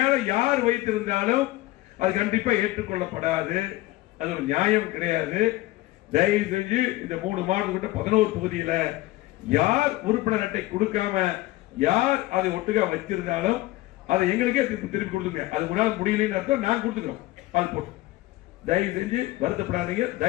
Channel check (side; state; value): right; quieter; 18.1 dB